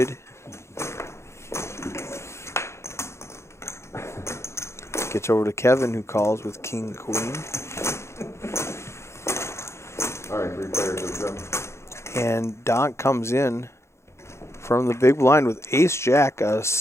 Gets over to Kevin, who calls with king queen. All right, 3 players have come. And Donk comes in from the big blind with ace jack, a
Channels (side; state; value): right; late; 0.13 ms